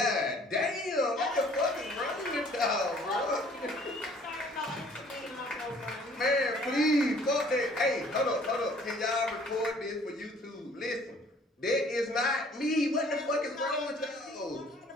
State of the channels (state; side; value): normal; both; correlation 0.56